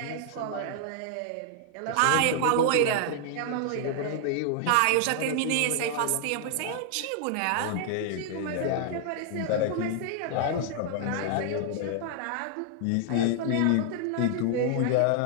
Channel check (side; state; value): both; different; correlation 0.00